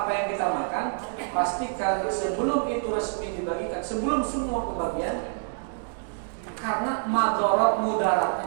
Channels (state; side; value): silent; left; digital silence